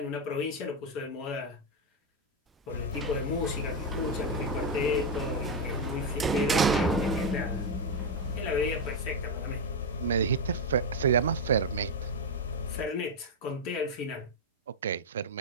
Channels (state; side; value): normal; both; correlation 0.04